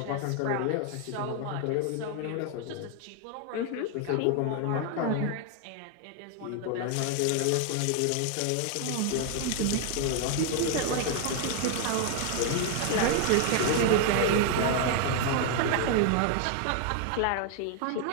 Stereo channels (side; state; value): both; different; correlation 0.00